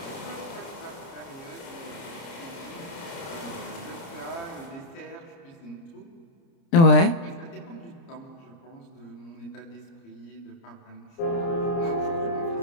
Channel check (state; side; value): late; right; 30 ms